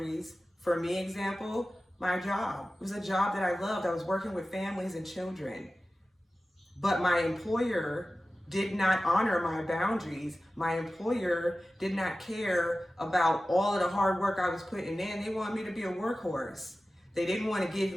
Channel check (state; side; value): normal; both; correlation 0.95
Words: for me, example, my job. It was a job that I loved. I was working with families and children. But my employer did not honor my boundaries. My employer did not care about all of the hard work I was putting in. They wanted me to be a workhorse. They didn't want to give